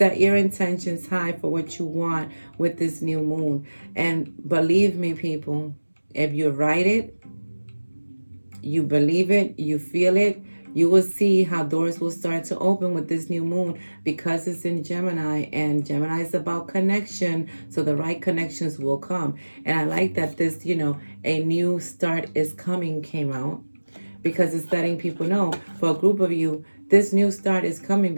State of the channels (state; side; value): inverted; both; correlation -1.00